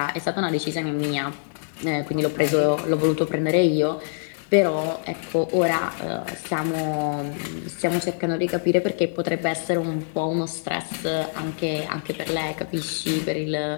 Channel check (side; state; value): right; silent; 59 dB below the other